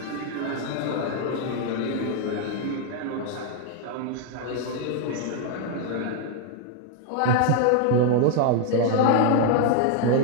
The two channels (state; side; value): different; both; correlation 0.00